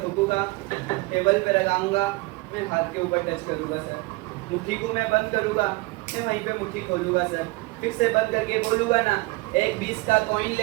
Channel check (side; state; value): left; quieter; 23.5 dB